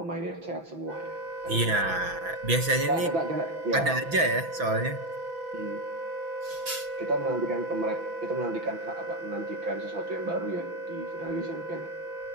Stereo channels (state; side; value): late; left; 6.0 ms